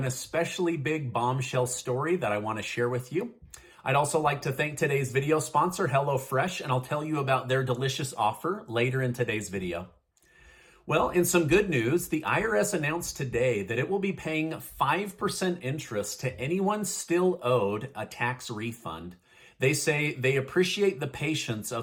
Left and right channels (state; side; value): identical; both; correlation 1.00